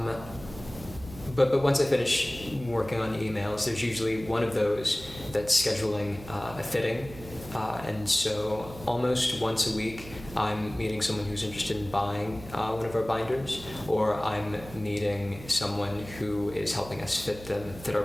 but once I finish working on emails, there's usually one of those that's scheduling a fitting, and so almost once a week I'm meeting someone who's interested in buying one of our binders, or I'm meeting someone who is helping us fit our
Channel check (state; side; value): noise; right; hum, 15 dB below the sound